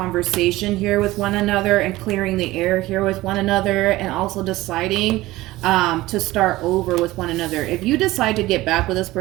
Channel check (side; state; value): left; quieter; 18.1 dB